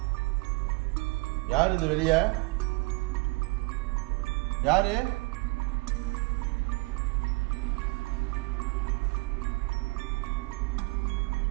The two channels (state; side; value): quieter; left; 27.2 dB